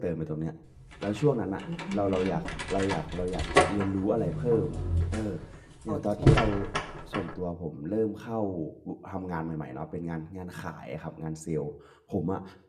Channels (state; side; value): identical; both; correlation 1.00